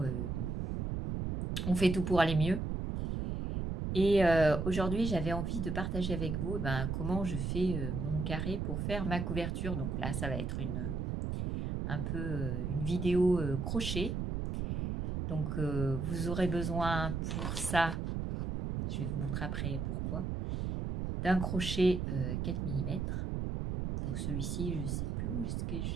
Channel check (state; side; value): noise; right; rumble, 2 dB below the sound